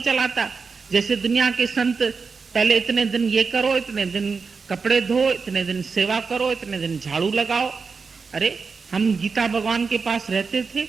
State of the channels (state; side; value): quieter; left; 5.0 dB